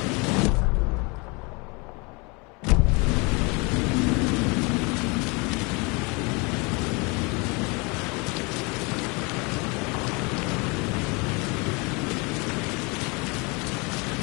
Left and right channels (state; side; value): quieter; right; 29.1 dB